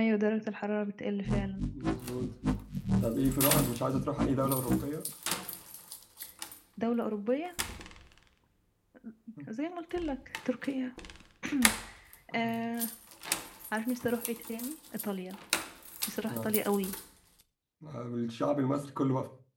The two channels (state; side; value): identical; both; correlation 1.00